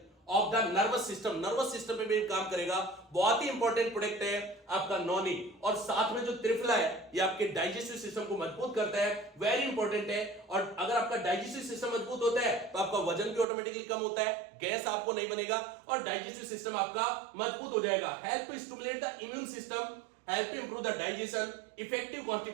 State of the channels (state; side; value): drops out; left; at 13.5 s